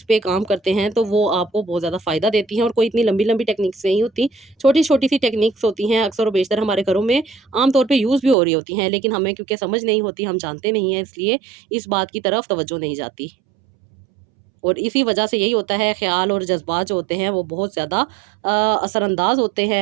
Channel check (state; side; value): drops out; left; at 8.3 s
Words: پہ کام کرتے ہیں تو وہ آپ کو بہت زیادہ فائدہ دیتی ہیں، اور کوئی اتنی لمبی لمبی ٹیکنیکس نہیں ہوتی، چھوٹی چھوٹی سی ٹیکنیکس ہوتی ہیں، اکثر و بیشتر ہمارے گھروں میں عام طور پہ یوز بھی ہو رہی ہوتی ہیں، لیکن ہمیں کیونکہ سمجھ نہیں ہوتی، ہم جانتے نہیں ہیں، اس لیے اس بات کی طرف توجہ نہیں جاتی، اور اسی وجہ سے یہی ہوتا ہے خیال اور جذبات جو ہوتے ہیں وہ بہت زیادہ اثر انداز ہوتے ہیں